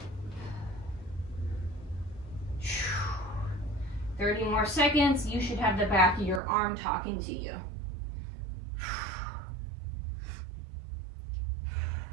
30 more seconds. You should have the back of your arm talking to you.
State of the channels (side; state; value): left; drops out; at 6.4 s